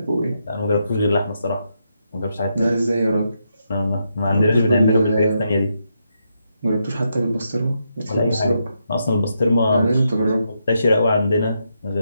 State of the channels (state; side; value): inverted; both; correlation -0.82